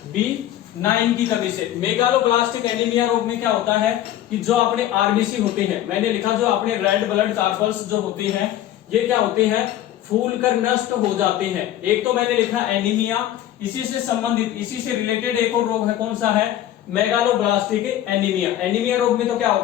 B9 की कमी से। मेगालोब्लास्टिक एनीमिया रोग में क्या होता है कि जो अपने आरबीसी होते हैं, मैंने लिखा जो अपने रेड ब्लड कार्पल्स जो होते हैं ये क्या होते हैं? फूल कर नष्ट हो जाते हैं। एक तो मैंने लिखा एनीमिया, इसी से संबंधित, इसी से रिलेटेड एक और रोग है, कौन सा है? Megaloblastic anaemia. एनीमिया रोग में तो क्या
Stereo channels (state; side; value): quieter; right; 12.5 dB